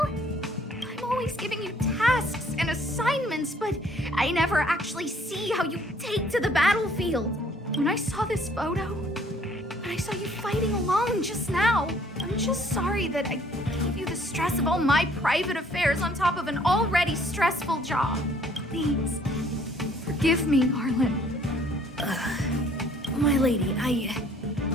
I'm always giving you tasks and assignments, but I never actually see how you take to the battlefield. When I saw this photo, when I saw you fighting alone just now, I'm just sorry that I gave you the stress of all my private affairs on top of an already stressful job. Please, forgive me, Arlen. My lady,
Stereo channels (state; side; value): normal; both; correlation 0.60